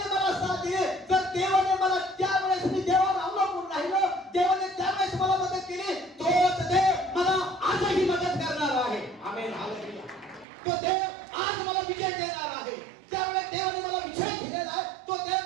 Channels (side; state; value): left; drops out; at 10.5 s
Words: मला साथ दिली. जर देवाने मला त्यावेळेस मी देवावर अवलंबून राहिलो, देवाने त्यावेळेस मला मदत केली, तोच देव मला आजही मदत करणार आहे. आमेन. हालेलुया. तो देव आज मला विजय देणार आहे. त्यावेळेस देवाने मला विजय दिलेला आहे, तो